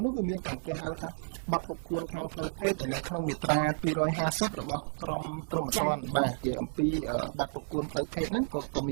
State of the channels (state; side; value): silent; left; 57 dB below the other